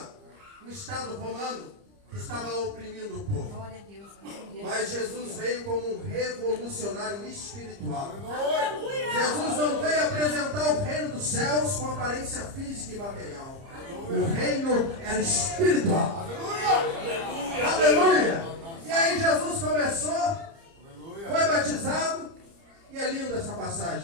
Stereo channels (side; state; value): left; late; 30 ms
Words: o Estado romano, que estava oprimindo o povo. Glória a Deus. Mas Jesus veio como um revolucionário espiritual. Jesus não veio apresentar o reino dos céus com aparência física e material. O reino era espiritual. Aleluia! E aí Jesus começou, foi batizado, e é linda essa